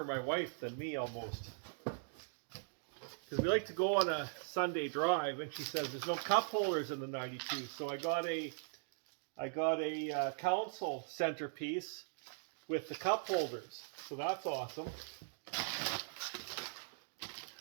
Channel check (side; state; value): left; silent; digital silence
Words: my wife than me almost. Because we like to go on a Sunday drive and she says there's no cup holders in the 92. So I got a console centerpiece with the cup holders. So that's awesome.